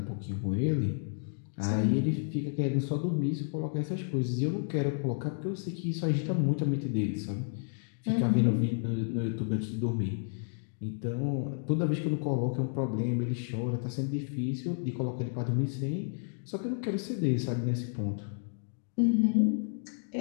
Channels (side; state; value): right; silent; digital silence